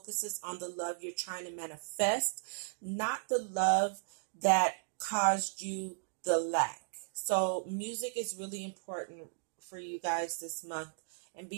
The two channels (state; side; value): silent; left; digital silence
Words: on the love you're trying to manifest, not the love that caused you the lack. So music is really important for you guys this month, and